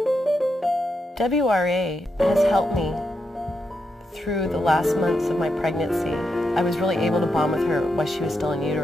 WRA has helped me through the last months of my pregnancy. I was really able to bond with her while she was still in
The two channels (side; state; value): both; normal; correlation 0.84